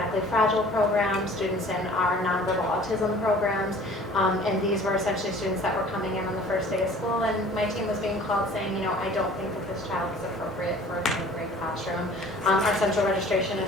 fragile program, students in our nonverbal autism programs, and these were essentially students that were coming in on the first day of school, and my team was being called saying, I don't think that this child is appropriate for a grade classroom. Our central registration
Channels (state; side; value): normal; both; correlation 0.49